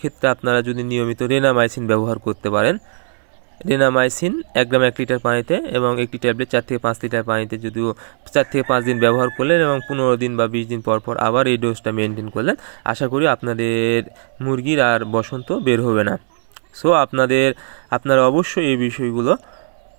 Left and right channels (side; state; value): left; silent; digital silence